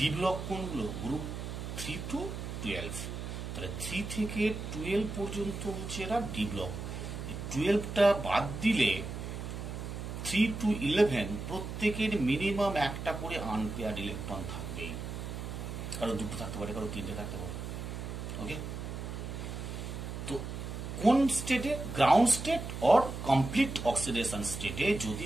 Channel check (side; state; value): right; noise; hum, 6 dB below the sound